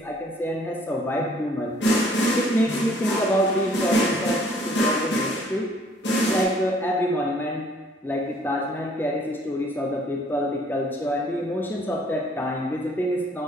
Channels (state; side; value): normal; both; correlation 0.60